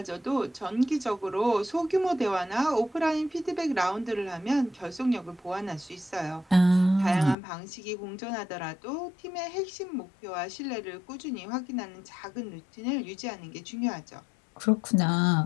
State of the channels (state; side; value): drops out; right; at 7.4 s